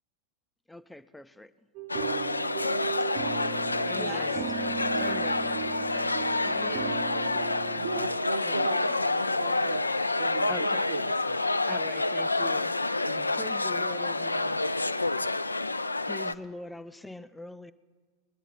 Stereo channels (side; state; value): both; inverted; correlation -0.82